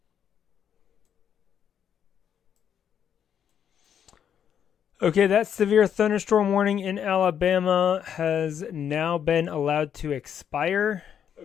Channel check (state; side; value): quieter; right; 8.7 dB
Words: Okay, that severe thunderstorm warning in Alabama has now been allowed to expire.